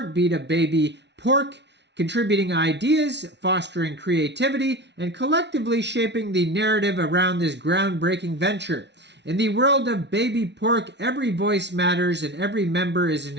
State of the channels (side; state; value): left; late; 0.50 ms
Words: of BabyPork, contributing ideas, fostering creativity, and collectively shaping the narrative around this groundbreaking venture. In the world of BabyPork, every voice matters and every member is an